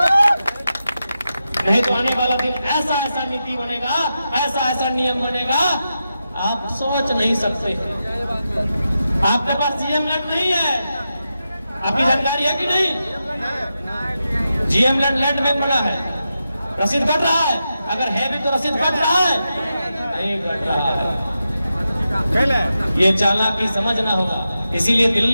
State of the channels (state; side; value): inverted; both; correlation -0.89